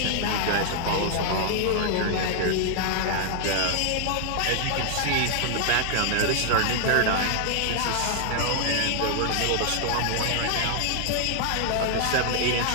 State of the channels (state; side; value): different; both; correlation -0.01